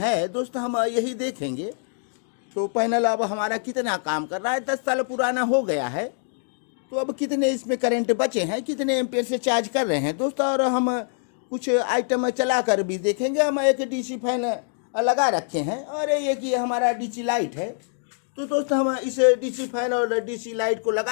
दोस्तों, हम यही देखेंगे। तो पैनल अब हमारा कितना काम कर रहा है, 10 साल पुराना हो गया है। तो अब कितने इसमें करंट बचे हैं, कितने एम्पेयर से चार्ज कर रहे हैं दोस्तों। और हम कुछ आइटम चला कर भी देखेंगे। हम एक डीसी फैन लगा रखे हैं और एक ये हमारा डीसी लाइट है। तो दोस्तों हम इस डीसी फैन और डीसी लाइट को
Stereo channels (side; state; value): right; silent; digital silence